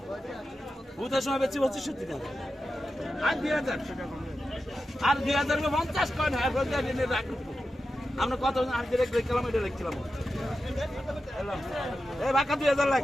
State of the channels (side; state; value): both; normal; correlation 0.91